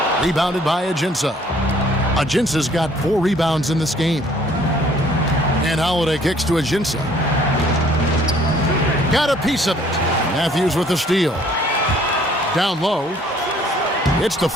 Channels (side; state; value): both; normal; correlation 0.59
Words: Rebounded by Ajinça. Ajinça's got 4 rebounds in this game. And Holiday kicks to Ajinça. Got a piece of it. Matthews with the steal. Down low. It's